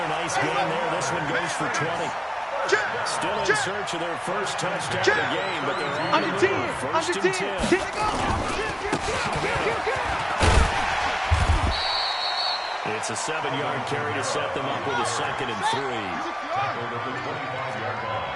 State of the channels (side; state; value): both; identical; correlation 1.00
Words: nice game there. This one goes for 20. Still in search of their first touchdown of the game, but they're on the move. First and 10. It's a 7-yard carry to set them up with a 2nd and 3. Tackled at the 25-yard